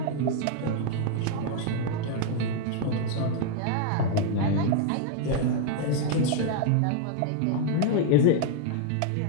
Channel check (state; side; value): different; both; correlation 0.00